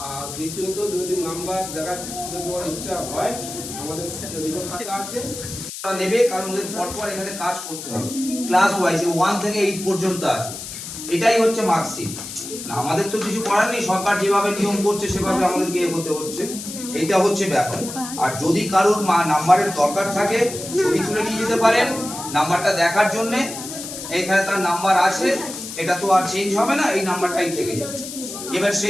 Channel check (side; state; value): left; noise; hiss, 9 dB below the sound